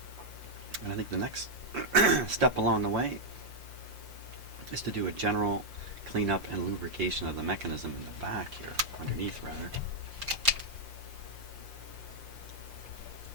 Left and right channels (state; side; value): late; left; 5.7 ms